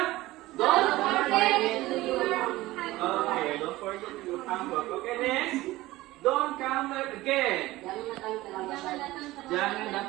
Don't forget to do your homework. Oke, don't forget to do your homework. Oke, next. Don't come late again. Jangan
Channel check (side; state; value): left; quieter; 18.0 dB